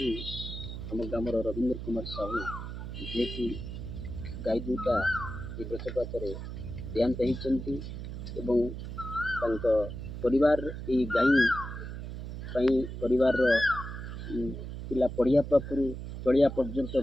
आम ग्राम रवींद्र कुमार साहू जी की गाई दुटा वज्रपात देहांत होती परिवार ये गाई परिवार पिला पढ़िया पाखु चलिया पर्यंत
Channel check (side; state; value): right; noise; hum, 8 dB below the sound